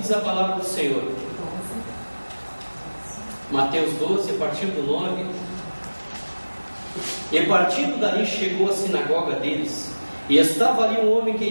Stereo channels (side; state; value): both; inverted; correlation -1.00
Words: a palavra do Senhor. Mateus 12, a partir do 9. E partindo dali chegou à sinagoga deles, e estava ali um homem